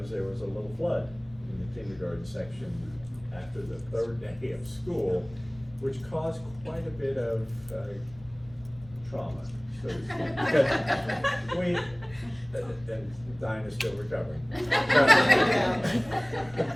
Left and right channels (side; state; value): left; noise; rumble, 22 dB below the sound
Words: there was a little flood in the kindergarten section after the third day of school, which caused quite a bit of trauma, so to speak. Because we, and Dinah's still recovering.